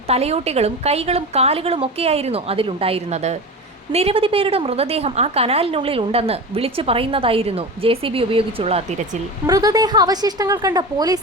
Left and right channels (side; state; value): both; normal; correlation 0.27